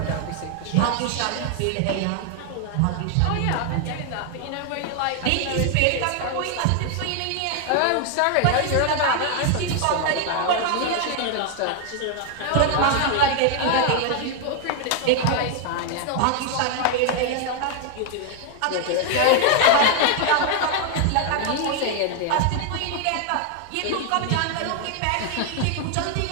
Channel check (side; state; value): both; different; correlation 0.00